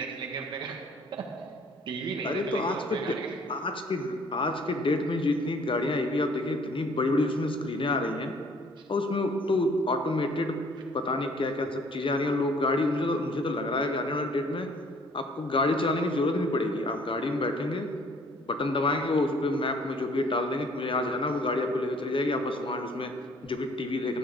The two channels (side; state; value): both; normal; correlation 0.58